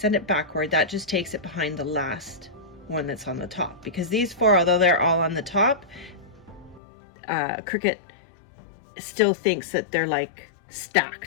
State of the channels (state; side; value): drops out; right; at 6.8 s